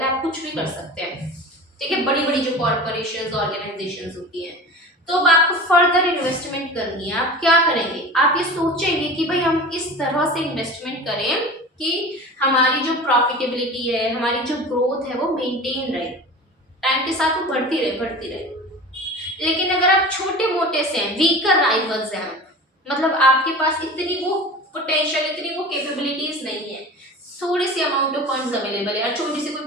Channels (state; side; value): normal; both; correlation 0.35